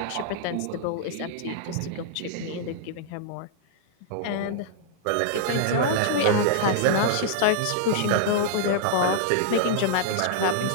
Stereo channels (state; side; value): different; both; correlation -0.01